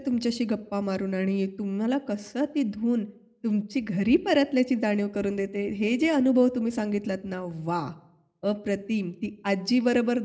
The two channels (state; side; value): identical; both; correlation 1.00